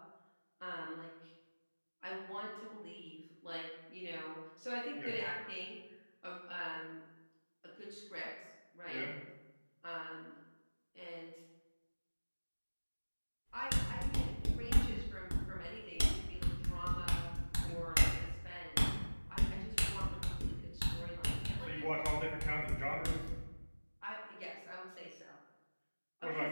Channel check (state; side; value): inverted; both; correlation -1.00